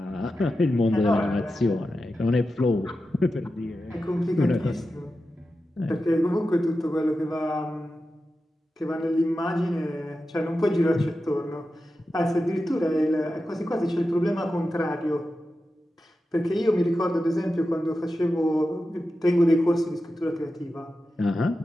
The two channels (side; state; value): both; normal; correlation 0.91